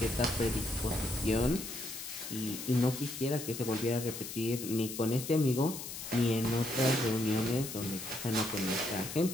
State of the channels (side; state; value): left; noise; hiss, 8 dB below the sound